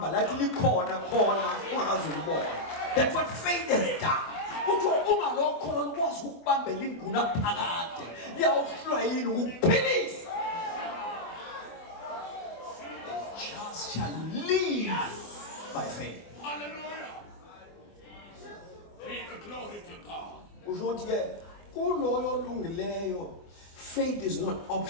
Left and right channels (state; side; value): late; right; 24 ms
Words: lathi likhona khona ungakazi ulibona. That's what faith has done. Uthi ungalokholo lukwazi ukubambela ingunaphakade liyawuhlwa yini ukuphilisa. Just shall live by faith. Hallelujah. Be the glory to God. usho ukuthi ke kuloyo olungileyo faith is not